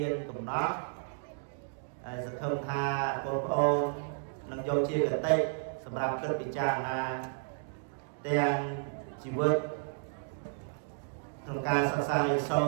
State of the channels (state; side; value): silent; left; digital silence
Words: ានកំណត់ហើយសង្ឃឹមថាបងប្អូននឹងយកជាកតិសម្រាប់គិតពិចារណាទាំងជីវិតក្នុងការសិក្សារៀនសូ